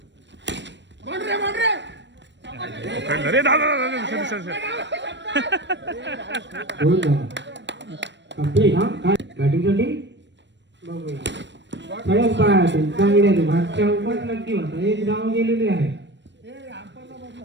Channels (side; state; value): left; late; 0.53 ms